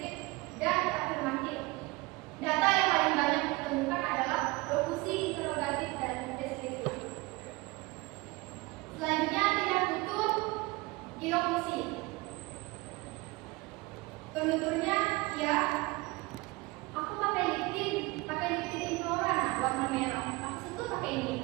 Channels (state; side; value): quieter; left; 23.3 dB